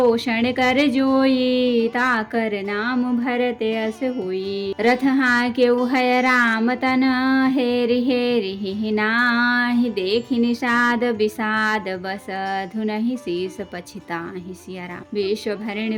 कर जोई, ताकर नाम भरत अस होई। रथ हाके उहय राम तन, हेरि हेरि नाही। देखि निषाद विषाद बस, धुनहि शीस पछिताहि। सिया राम। विश्व भरण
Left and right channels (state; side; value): identical; both; correlation 1.00